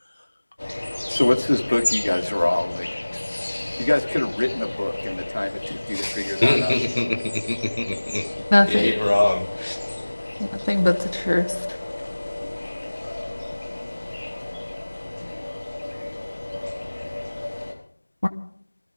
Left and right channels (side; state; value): both; inverted; correlation -1.00